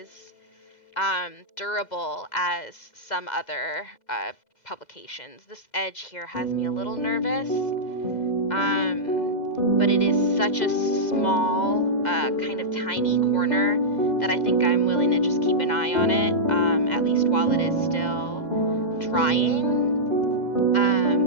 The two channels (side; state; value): right; late; 2.0 ms